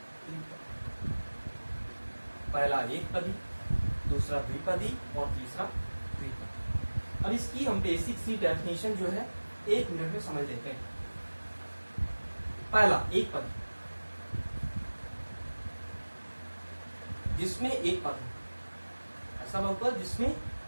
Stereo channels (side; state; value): both; inverted; correlation -1.00